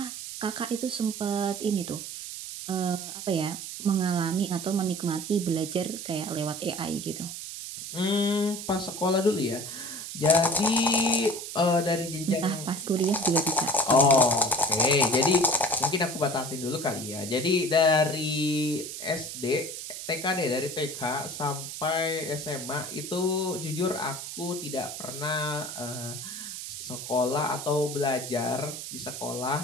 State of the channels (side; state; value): right; noise; hiss, 8 dB below the sound